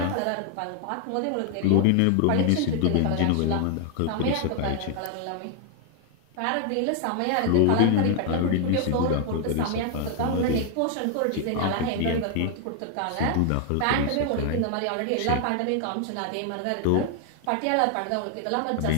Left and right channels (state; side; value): different; both; correlation 0.00